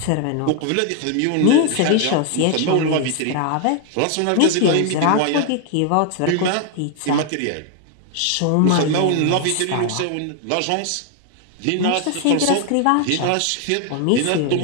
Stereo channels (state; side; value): different; both; correlation 0.00